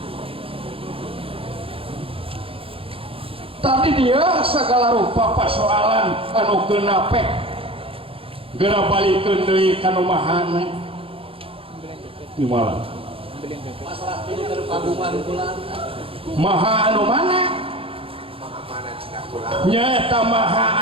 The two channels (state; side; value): late; left; 0.27 ms